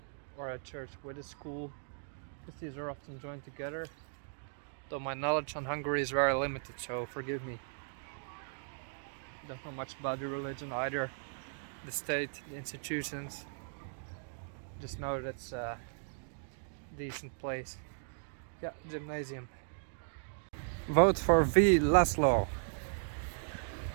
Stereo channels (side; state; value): left; silent; digital silence